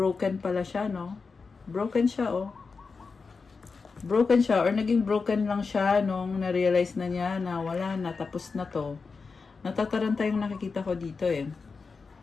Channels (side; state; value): right; quieter; 4.7 dB